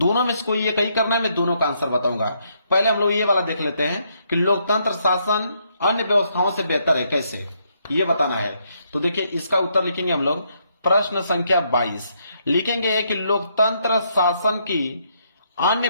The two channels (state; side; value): inverted; both; correlation -0.74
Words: में से कोई एक ही करना है, मैं दोनों का आंसर बताऊंगा। पहले हम लोग ये वाला देख लेते हैं कि लोकतंत्र शासन अन्य व्यवस्थाओं से बेहतर है कैसे, ये बताना है। तो देखिए इसका उत्तर लिखेंगे हम लोग। प्रश्न संख्या 22 लिखेंगे कि लोकतंत्र शासन की अन्य